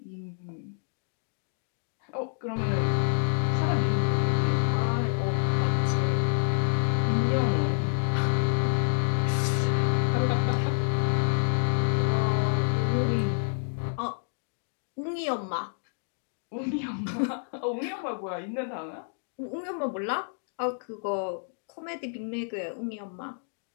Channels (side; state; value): right; silent; digital silence